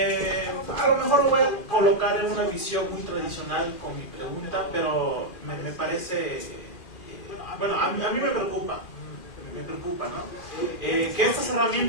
A lo mejor lo voy a colocar en una visión muy tradicional con mi pregunta, pero me parece, bueno, a mí me preocupa, ¿no? Que estas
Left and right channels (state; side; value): late; right; 2.4 ms